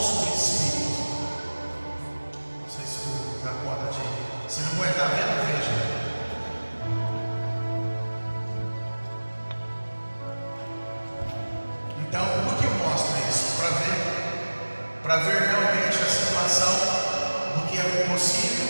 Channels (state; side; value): inverted; both; correlation -1.00